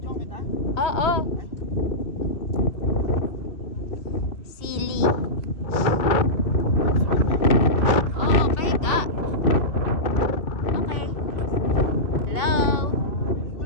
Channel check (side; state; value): right; late; 2.4 ms